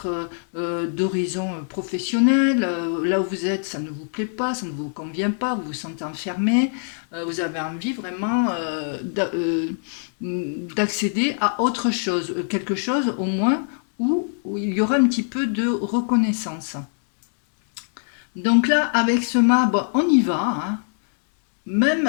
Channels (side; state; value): right; silent; digital silence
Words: d'horizon professionnel. Là où vous êtes, ça ne vous plaît pas, ça ne vous convient pas, vous vous sentez enfermé. Vous avez envie vraiment d'accéder à autre chose, quelque chose au moins où il y aura un petit peu de reconnaissance. Donc là, avec ce mât, bon, on y va. Hein. Même,